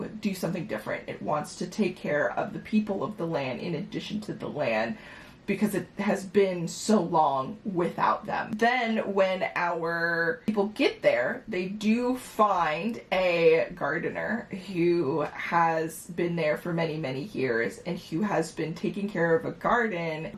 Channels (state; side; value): identical; both; correlation 1.00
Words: do something different. It wants to take care of the people of the land in addition to the land, because it has been so long without them. Then when our people get there, they do find a gardener who has been there for many, many years and who has been taking care of a garden